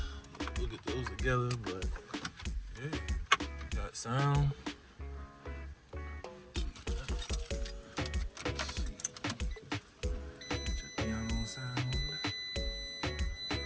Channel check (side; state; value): both; identical; correlation 1.00